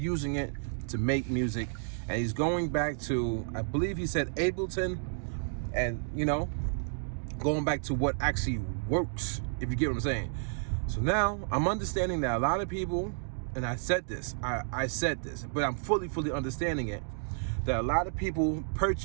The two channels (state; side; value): silent; left; digital silence